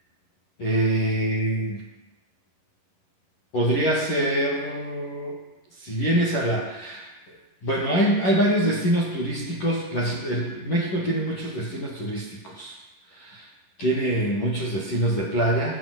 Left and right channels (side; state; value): right; late; 11 ms